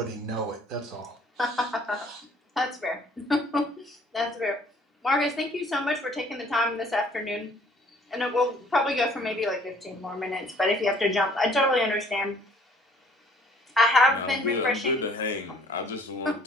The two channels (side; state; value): both; normal; correlation 0.57